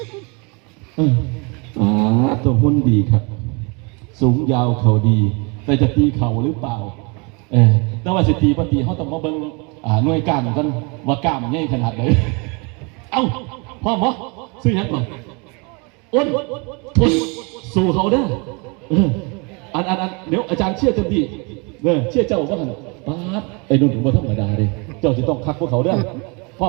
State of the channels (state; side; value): quieter; left; 31.0 dB